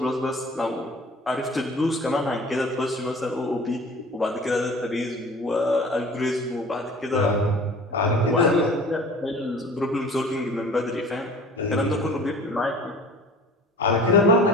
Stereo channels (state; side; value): normal; both; correlation 0.44